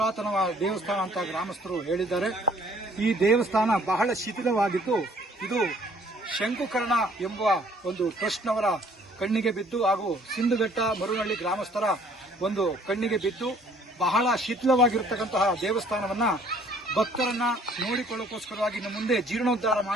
ದೇವಸ್ಥಾನ ಅಂತ ಗ್ರಾಮಸ್ಥರು ಹೇಳಿದ್ದಾರೆ. ಈ ದೇವಸ್ಥಾನ ಬಹಳ ಶಿಥಿಲವಾಗಿದ್ದು, ಇದು ಶಂಕುಕರ್ಣ ಎಂಬುವ ಒಂದು ಟ್ರಸ್ಟ್ನವರ ಕಣ್ಣಿಗೆ ಬಿದ್ದು ಹಾಗೂ ಸಿಂಧುಘಟ್ಟ ಮರುನಹಳ್ಳಿ ಗ್ರಾಮಸ್ಥರ ಒಂದು ಕಣ್ಣಿಗೆ ಬಿದ್ದು ಬಹಳ ಶಿಥಿಲವಾಗಿರತಕ್ಕಂತಹ ದೇವಸ್ಥಾನವನ್ನ ಭಕ್ತರನ್ನ ನೋಡಿಕೊಳ್ಳೋಕೋಸ್ಕರವಾಗಿ ಇನ್ನು ಮುಂದೆ ಜೀರ್ಣೋದ್ಧಾರ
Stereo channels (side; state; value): both; normal; correlation 0.59